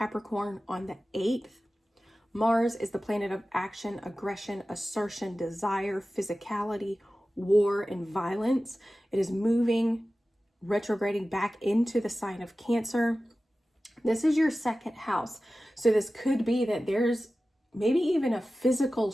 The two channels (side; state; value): both; normal; correlation 0.95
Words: on the 8th. Mars is the planet of action, aggression, assertion, desire, physicality, war, and violence. It is moving, retrograding back into the sign of Cancer. This is your second house. So this could be that there's maybe even a physical